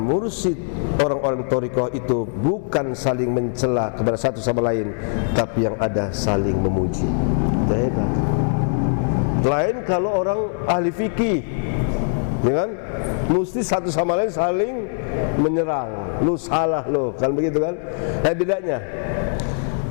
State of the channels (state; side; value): silent; right; 64 dB below the other